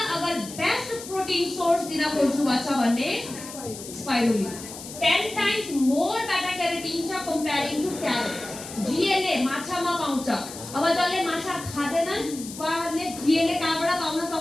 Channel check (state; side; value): noise; left; hiss, 12 dB below the sound